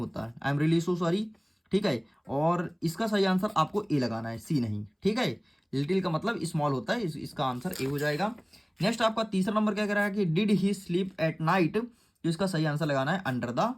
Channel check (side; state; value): both; identical; correlation 1.00